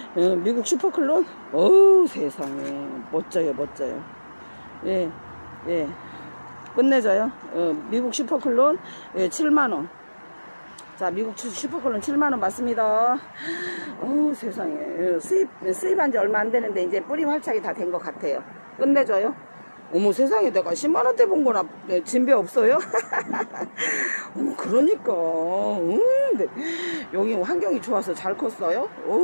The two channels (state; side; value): inverted; both; correlation -1.00